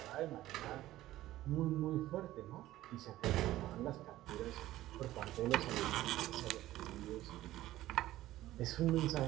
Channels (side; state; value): left; quieter; 15.2 dB